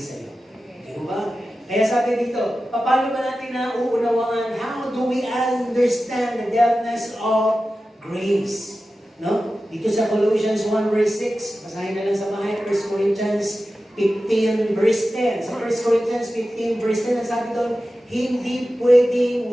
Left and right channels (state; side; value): normal; both; correlation 0.94